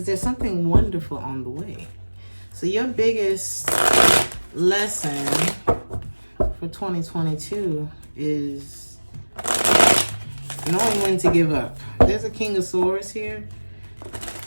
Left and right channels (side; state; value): both; inverted; correlation -1.00